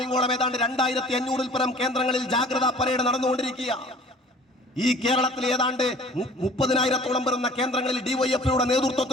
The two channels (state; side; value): normal; both; correlation 0.49